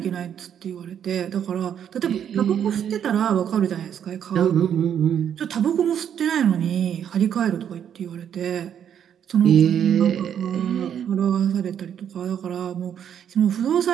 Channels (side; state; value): left; quieter; 9.0 dB